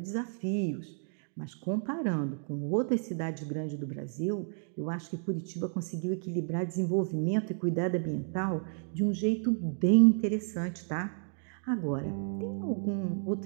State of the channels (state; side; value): silent; left; 56 dB below the other